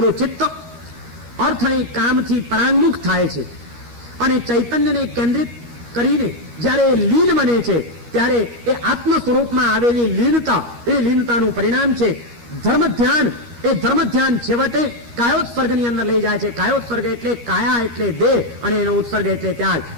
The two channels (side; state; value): left; late; 13 ms